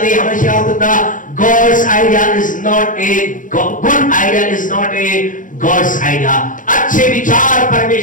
हमेशा याद रखना God's idea is not a good idea, is not a God's idea. अच्छे विचार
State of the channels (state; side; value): late; right; 0.38 ms